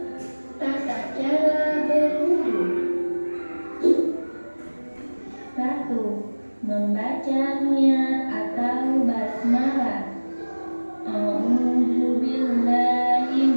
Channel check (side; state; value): both; inverted; correlation -1.00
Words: Tata cara berwudu. 1. Membaca niat atau basmalah. A'udzu billahi